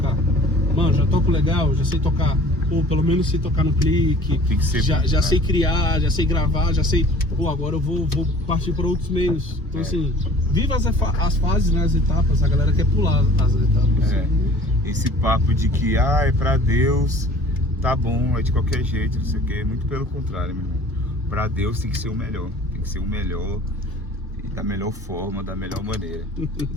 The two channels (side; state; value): both; normal; correlation 0.48